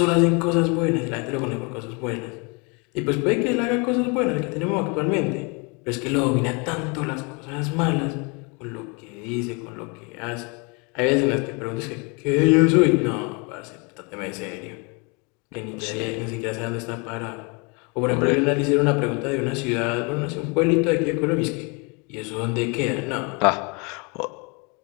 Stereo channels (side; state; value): right; quieter; 31.5 dB